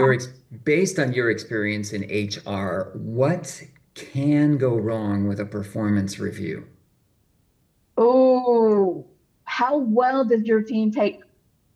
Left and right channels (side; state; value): both; identical; correlation 1.00